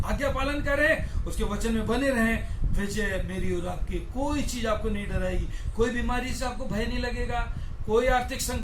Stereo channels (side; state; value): both; identical; correlation 1.00